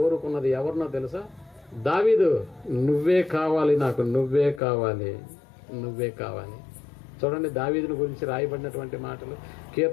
ఎవరినో తెలుసా? దావీదు. నువ్వే కావాలి నాకు, నువ్వే కావాలి. చూడండి దావీదుని గురించి రాయబడినటువంటి మాటలు.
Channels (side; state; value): right; drops out; at 4.6 s